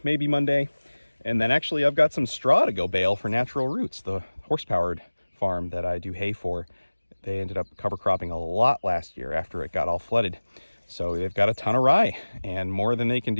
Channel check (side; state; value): both; inverted; correlation -1.00